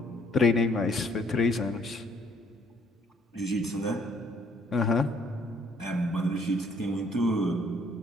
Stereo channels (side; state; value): both; normal; correlation 0.64